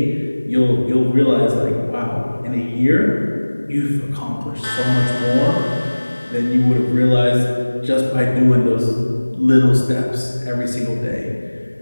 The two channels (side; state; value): both; inverted; correlation -1.00